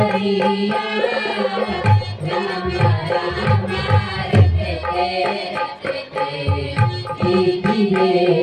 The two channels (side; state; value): both; identical; correlation 1.00